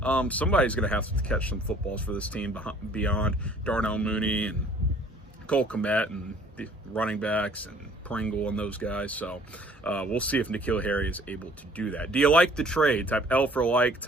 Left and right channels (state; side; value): normal; both; correlation 0.55